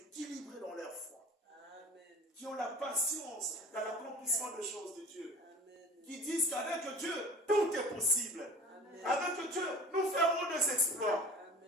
dans leur foi. Amen. Qui ont la patience dans l'accomplissement des choses de Dieu. Amen. Qui disent qu'avec Dieu, tout est possible. Amen. Avec Dieu, nous ferons des exploits.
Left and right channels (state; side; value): normal; both; correlation 0.41